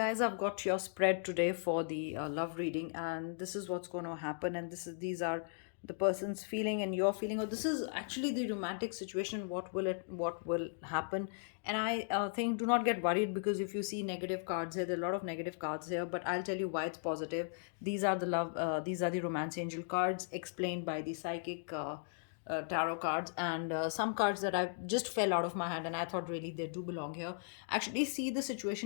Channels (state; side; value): silent; right; digital silence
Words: I've got your spread today for the love reading, and this is what's going to happen. And these are the person's feeling and your feeling, or this is actually the romantic situation. What will happen? And I think do not get worried, because if you see negative cards here, there are a lot of negative cards here. But I'll tell you why it's positive. These are the romance angel cards explained by the psychic. Tarot cards, and some cards that I just fell out of my hand and I thought really they do belong here. Actually see the